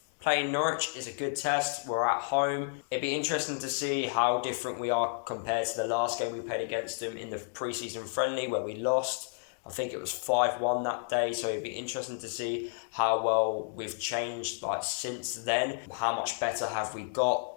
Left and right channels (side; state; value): right; silent; 57 dB below the other